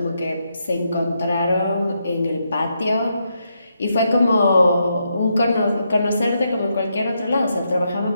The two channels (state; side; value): inverted; both; correlation -0.81